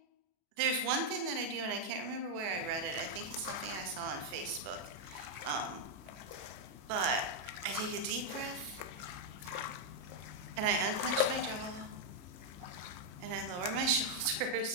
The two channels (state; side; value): late; left; 34 ms